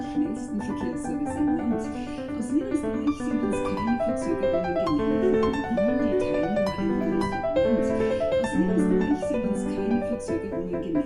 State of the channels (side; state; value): both; identical; correlation 1.00